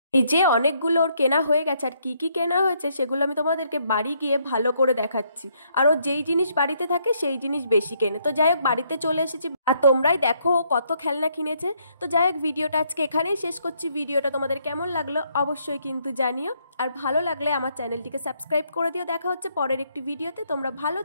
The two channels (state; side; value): inverted; both; correlation -0.71